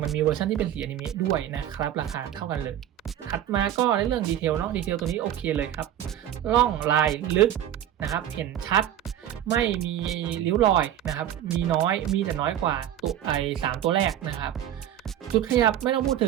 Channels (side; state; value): left; quieter; 11.1 dB